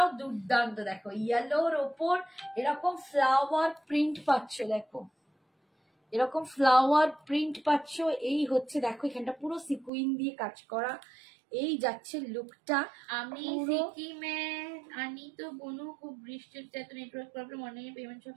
দুর্দান্ত, দেখো ইয়েলোর ওপর এরকম ফ্লাওয়ার প্রিন্ট পাচ্ছ, দেখো এরকম ফ্লাওয়ার প্রিন্ট পাচ্ছ। এই হচ্ছে দেখো এখানটা পুরো সিকুইন দিয়ে কাজ করা, এই যাচ্ছে লুকটা। আমি সিকিমে আনি তো বনু, খুব বৃষ্টির এত নেটওয়ার্ক প্রবলেম, অনেক পেমেন্ট সব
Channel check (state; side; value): drops out; left; at 9.9 s